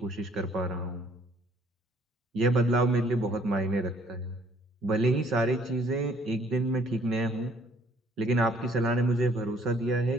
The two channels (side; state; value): both; normal; correlation 0.61